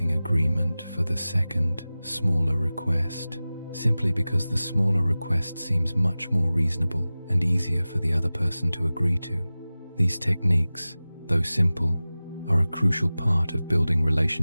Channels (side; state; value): both; inverted; correlation -0.97